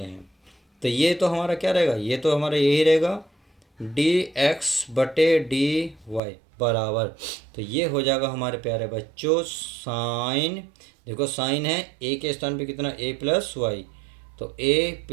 हैं। तो ये तो हमारा क्या रहेगा, ये तो हमारा यही रहेगा डी एक्स बटे डी वाई बराबर, तो ये हो जाएगा हमारे प्यारे बच्चों साइन, देखो साइन है ए के स्थान पे कितना ए प्लस वाई, तो ए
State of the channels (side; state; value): left; drops out; at 6.2 s